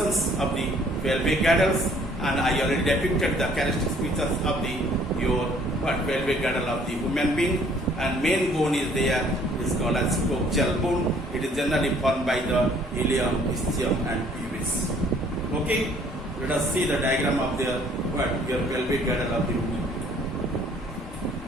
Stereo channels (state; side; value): normal; both; correlation 0.59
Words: of the pelvic girdles, and I already depicted the characteristic features of your pelvic girdle of the human being. And main bone is there, is called as coaxial bone. It is generally formed by the ilium, ischium and pubis. Okay, let us see the diagram of your pelvic girdle of the human being.